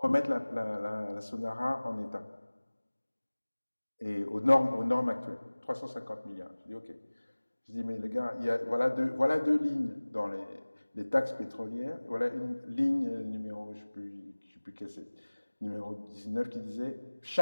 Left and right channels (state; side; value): inverted; both; correlation -1.00